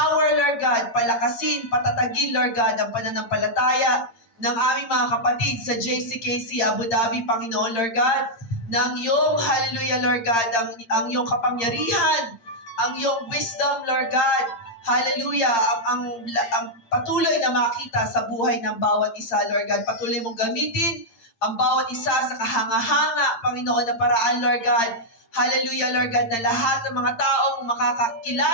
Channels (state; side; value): late; right; 8.7 ms